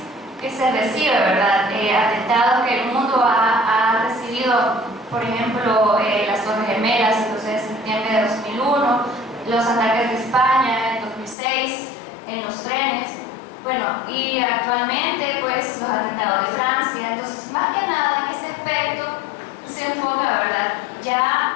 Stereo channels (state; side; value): drops out; right; at 11.4 s